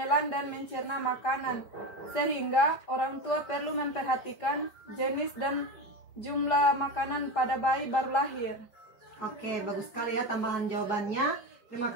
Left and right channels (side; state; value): right; late; 4.9 ms